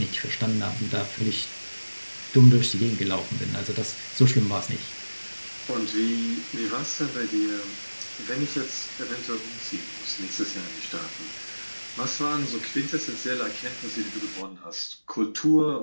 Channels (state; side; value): inverted; both; correlation -1.00